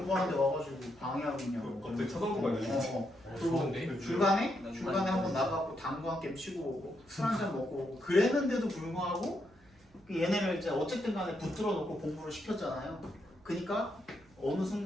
와가지고 방해하고 있냐고. 갑자기 쳐다보고 있네. 그리고 중간에 한번 나가고 당구 한 게임 치고 오고 술 한 잔 먹고 오고 그랬는데도 불구하고 얘네를 이제 어쨌든 간에 붙들어 놓고 공부를 시켰잖아요. 그러니까 어느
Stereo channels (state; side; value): noise; right; hum, 29 dB below the sound